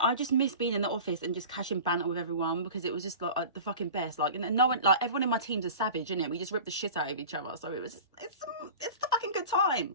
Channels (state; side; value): inverted; both; correlation -0.37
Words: just miss being in the office and just catching banter with everyone, because it was just like the fucking best. Like, and no one, like, everyone in my team's a savage, innit? We just rip the shit out of each other. So it was just, it's the fucking good